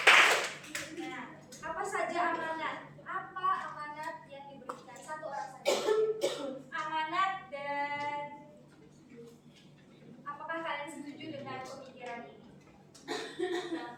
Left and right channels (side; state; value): both; identical; correlation 1.00